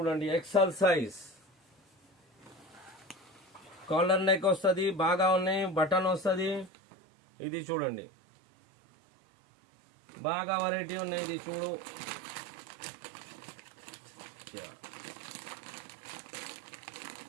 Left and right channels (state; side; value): drops out; left; at 6.7 s